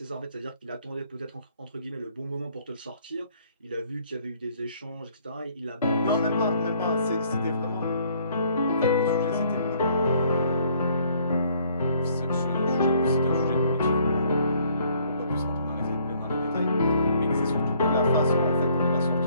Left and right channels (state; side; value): inverted; both; correlation -0.63